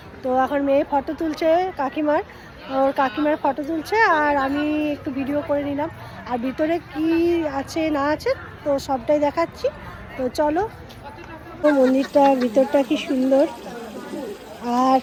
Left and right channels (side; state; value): both; identical; correlation 1.00